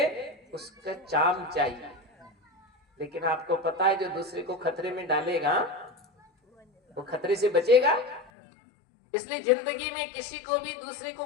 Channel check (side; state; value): right; drops out; at 8.3 s